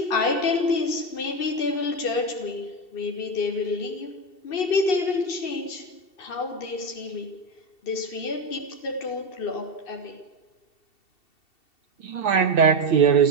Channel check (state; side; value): late; right; 2.7 ms